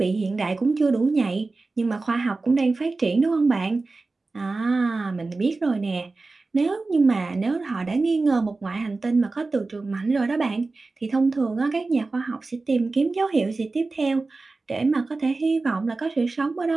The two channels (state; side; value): quieter; left; 3.6 dB